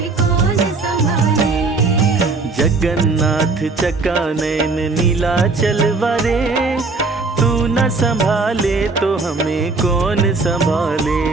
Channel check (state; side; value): quieter; left; 3.8 dB